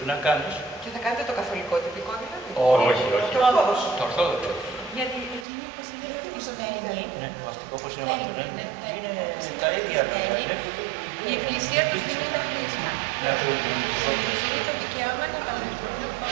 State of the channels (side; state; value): left; drops out; at 5.5 s